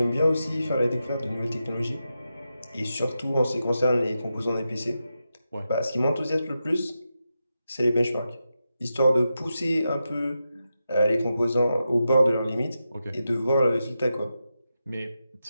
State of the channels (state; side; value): inverted; both; correlation -0.89